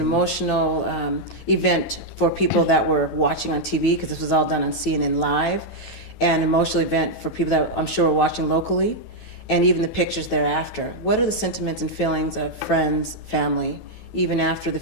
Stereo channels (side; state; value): right; late; 12 ms